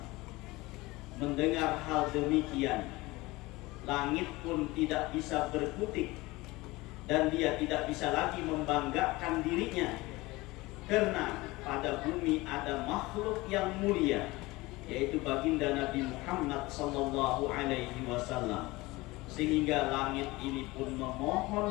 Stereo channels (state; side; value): quieter; right; 21.1 dB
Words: Mendengar hal demikian, langit pun tidak bisa berkutik, dan dia tidak bisa lagi membanggakan dirinya, karena pada bumi ada makhluk yang mulia, yaitu baginda Nabi Muhammad sallallahu alaihi wasallam. Sehingga langit ini pun